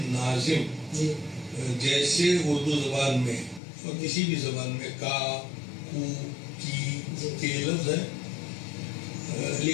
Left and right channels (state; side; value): drops out; right; at 3.6 s